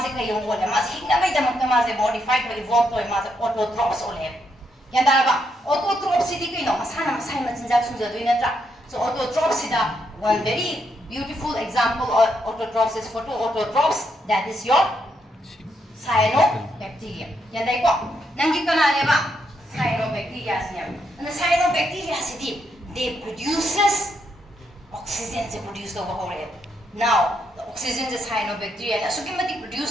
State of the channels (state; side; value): normal; both; correlation 0.78